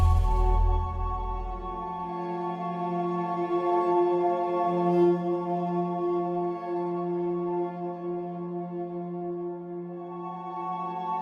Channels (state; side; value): identical; both; correlation 1.00